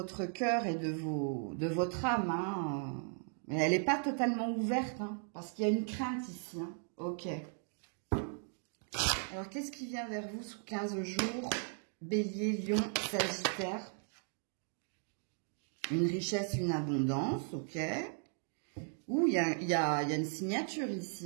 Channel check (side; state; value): left; silent; 53 dB below the other